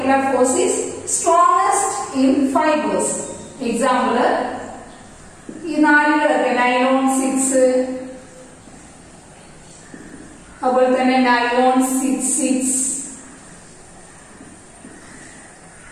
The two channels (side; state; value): both; identical; correlation 1.00